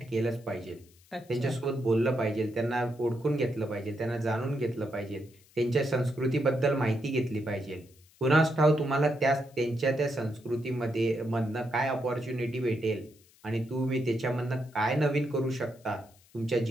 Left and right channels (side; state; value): left; noise; hiss, 29 dB below the sound